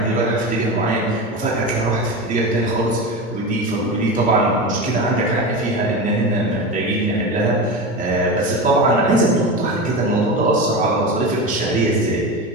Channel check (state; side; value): normal; both; correlation 0.24